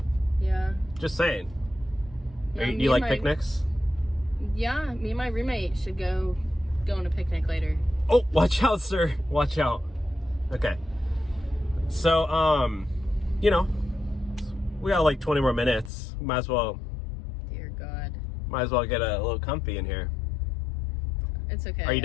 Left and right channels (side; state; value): right; drops out; at 15.9 s